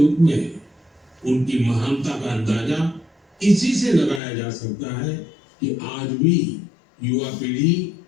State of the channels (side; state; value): right; drops out; at 4.2 s